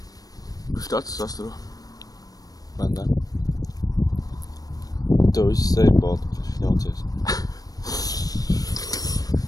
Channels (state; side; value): late; right; 0.18 ms